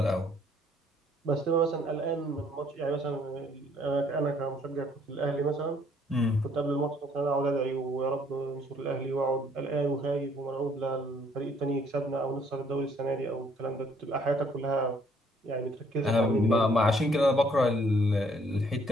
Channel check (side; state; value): both; normal; correlation 0.64